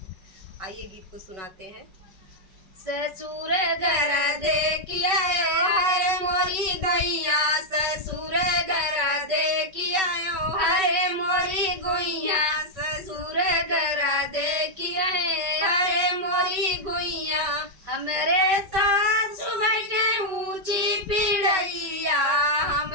आइए गीत को सुनाते हैं। ससुर घर देखिया हरे मोरी दैया, ससुर घर देखिया हरे मोरी गोइया, ससुर घर देखिया हरे मोरी गोइया। हमरे सासु बैठे ऊंची पीढ़ैया,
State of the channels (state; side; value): late; left; 5.3 ms